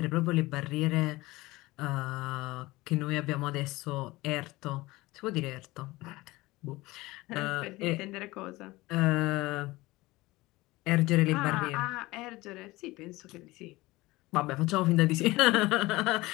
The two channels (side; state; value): right; quieter; 20.2 dB